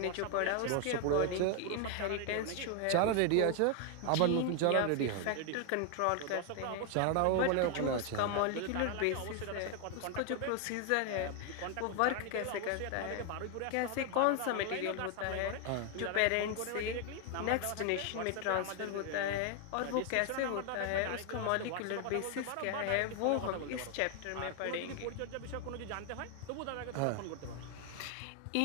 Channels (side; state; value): both; different; correlation 0.00